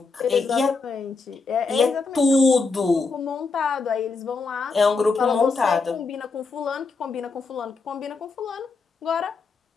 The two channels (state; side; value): quieter; right; 4.3 dB